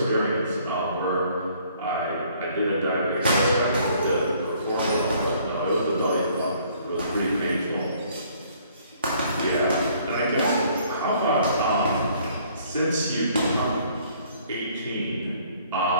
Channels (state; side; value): inverted; both; correlation -0.61